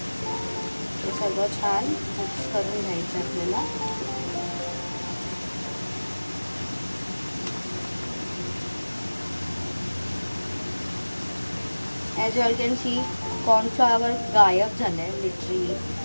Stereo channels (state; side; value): inverted; both; correlation -1.00